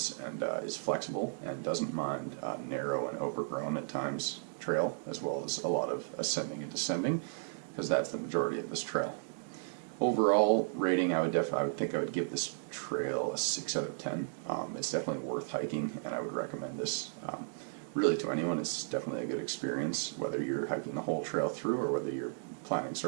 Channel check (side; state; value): left; silent; digital silence